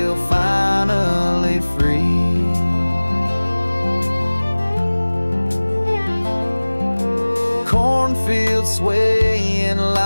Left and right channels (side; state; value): both; inverted; correlation -1.00